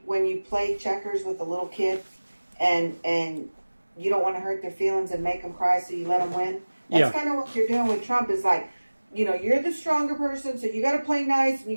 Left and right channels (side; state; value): both; inverted; correlation -1.00